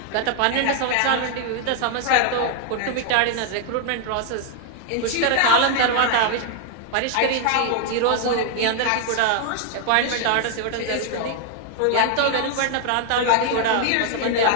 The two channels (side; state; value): both; different; correlation 0.00